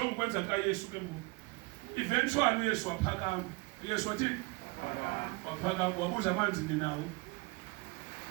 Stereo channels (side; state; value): left; quieter; 25.9 dB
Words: kwenza ka Yesu ke mu. Eventually Yesu waphakama. Yesu wathi waphakama wabuza amanzi ninawo.